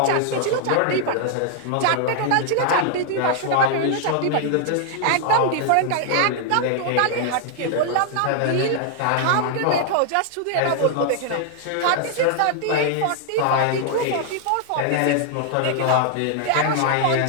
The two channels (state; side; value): different; both; correlation 0.00